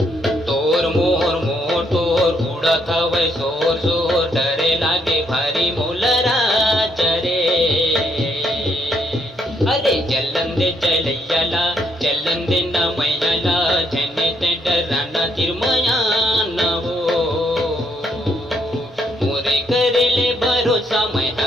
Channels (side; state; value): both; normal; correlation 0.73